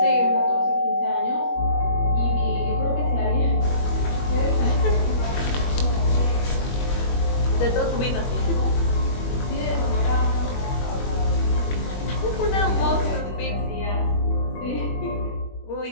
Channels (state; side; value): late; right; 21 ms